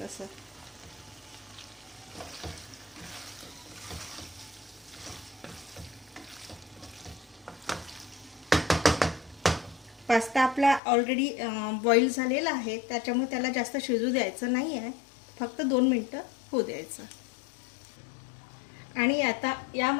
असं. पास्ता आपला ऑलरेडी बॉईल झालेला आहे, त्याच्यामुळे त्याला जास्त शिजू द्यायचं नाही आहे. फक्त 2 मिनिटं होऊ द्यायचं. आणि आता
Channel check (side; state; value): right; drops out; at 10.8 s